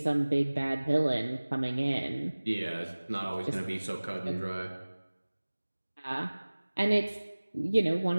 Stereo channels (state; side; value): inverted; both; correlation -1.00